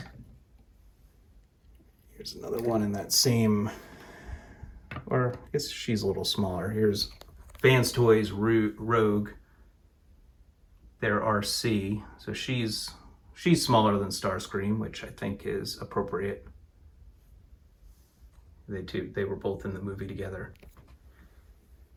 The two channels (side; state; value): both; identical; correlation 1.00